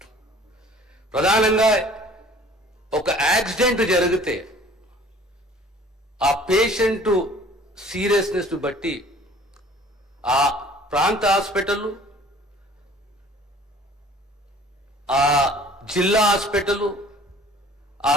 ప్రధానంగా ఒక యాక్సిడెంట్ జరిగితే ఆ పేషెంట్ సీరియస్నెస్ బట్టి ఆ ప్రాంత హాస్పిటల్, ఆ జిల్లా హాస్పిటల్, ఆ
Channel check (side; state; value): both; normal; correlation 0.51